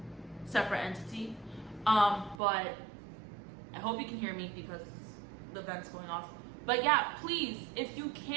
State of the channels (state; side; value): drops out; left; at 2.4 s